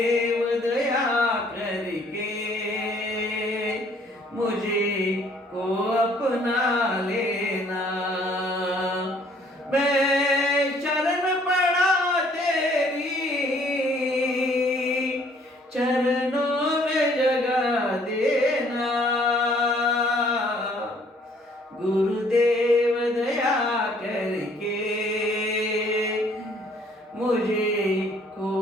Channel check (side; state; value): both; normal; correlation 0.61